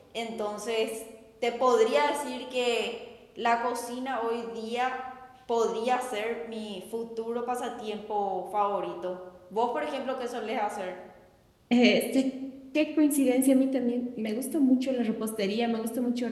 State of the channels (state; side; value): identical; both; correlation 1.00